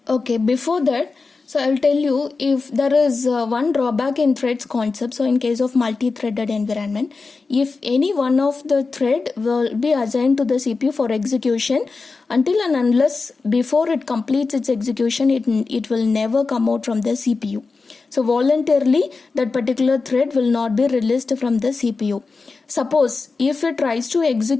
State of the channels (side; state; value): right; quieter; 4.2 dB